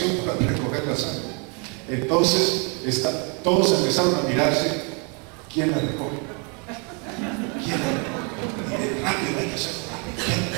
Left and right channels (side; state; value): left; quieter; 35.1 dB